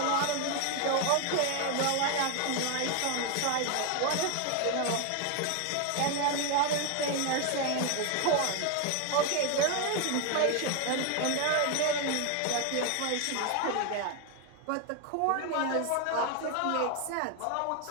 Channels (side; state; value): both; different; correlation 0.01